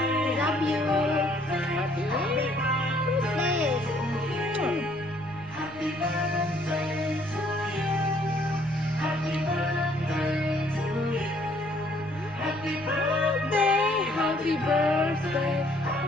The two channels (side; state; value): right; noise; rumble, 19 dB below the sound